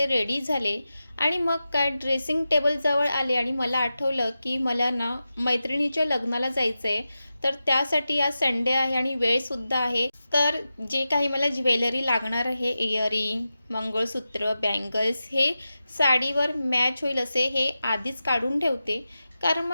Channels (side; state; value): both; inverted; correlation -0.93